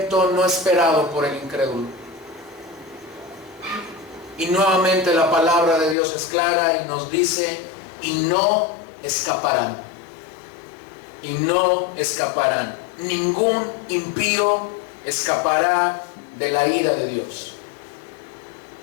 no esperado por el incrédulo. Y nuevamente la palabra de Dios es clara y nos dice, y no escaparán. Y no escaparán. Ningún impío escapará de la ira de Dios.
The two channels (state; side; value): drops out; right; at 6.0 s